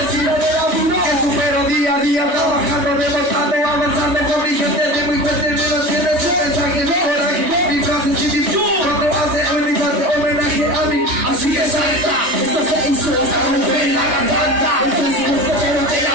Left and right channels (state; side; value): late; left; 3.3 ms